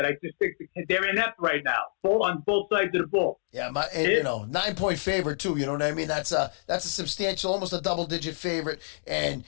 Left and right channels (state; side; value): silent; right; digital silence